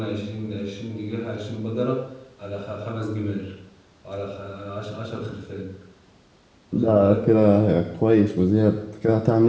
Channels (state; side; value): identical; both; correlation 1.00